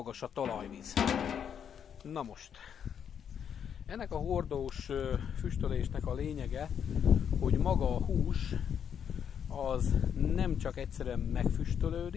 a talajvíz. Na most, ennek a hordós füstölésnek a lényege, hogy maga a hús az nem csak egyszerűen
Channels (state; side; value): quieter; right; 8.1 dB